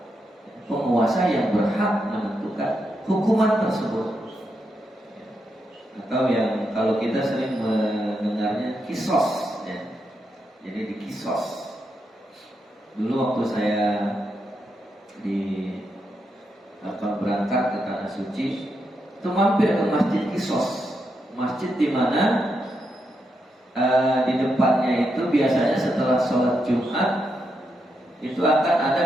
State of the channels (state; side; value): normal; both; correlation 0.83